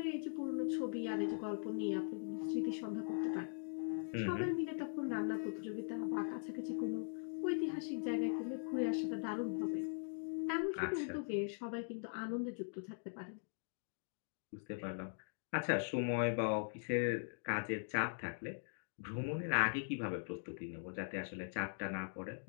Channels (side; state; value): right; silent; digital silence